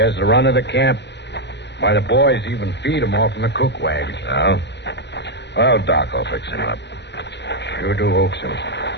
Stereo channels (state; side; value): late; right; 0.50 ms